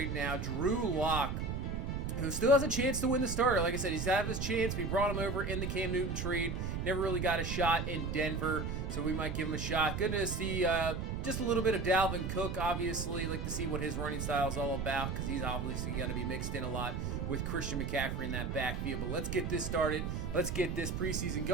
now, Drew Lock, who still has a chance to win the starter. Like I said, he's had his chance. We brought him over in the Cam Newton trade. Never really got a shot in Denver, so we might give him a shot. Good to see just a little bit of Dalvin Cook, obviously. Like to see what his running style is all about because he's obviously going to be mixed in a lot with Christian McCaffrey in that backfield. But let's get this started. Let's get this preseason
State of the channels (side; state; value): right; noise; rumble, 2 dB below the sound